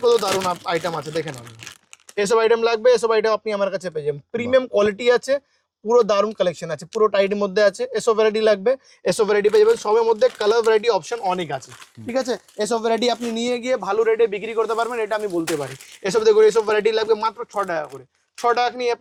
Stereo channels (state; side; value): identical; both; correlation 1.00